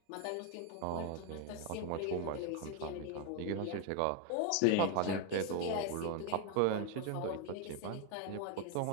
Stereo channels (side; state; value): both; different; correlation 0.01